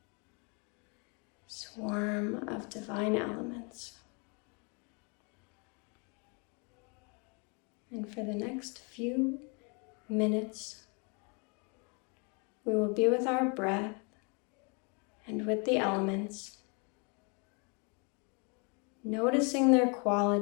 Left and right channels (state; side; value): quieter; right; 34.1 dB